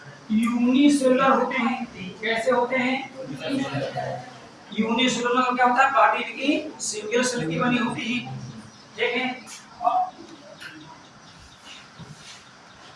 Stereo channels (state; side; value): identical; both; correlation 1.00